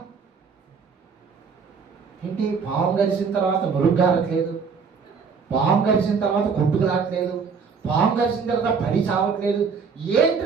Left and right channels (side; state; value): left; quieter; 5.6 dB